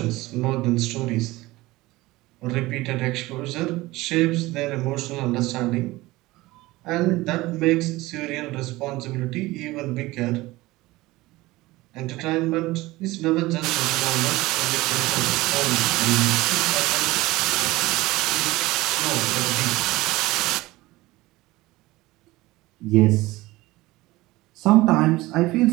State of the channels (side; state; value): left; quieter; 19.5 dB